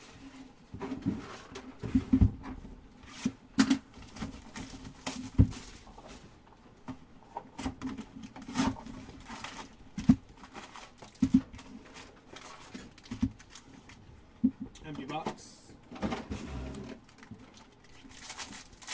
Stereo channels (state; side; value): identical; both; correlation 1.00